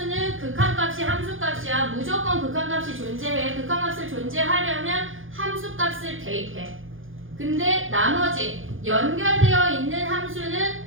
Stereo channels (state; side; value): late; left; 0.58 ms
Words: 극한값이 함수값이야. 무조건 극한값이 존재해. 극한값을 존재하려면 함수값을 대입해. 근데 나머지 연결되어 있는